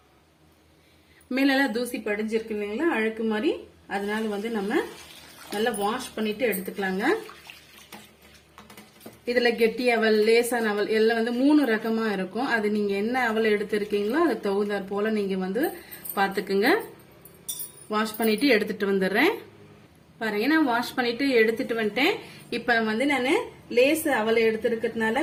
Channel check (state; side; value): identical; both; correlation 1.00